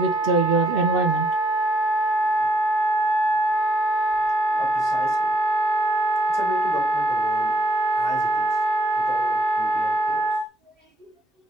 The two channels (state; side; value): normal; both; correlation 0.71